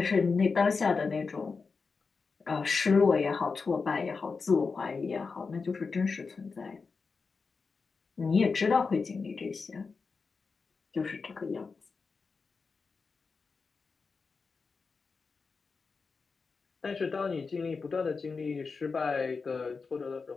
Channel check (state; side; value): quieter; right; 4.7 dB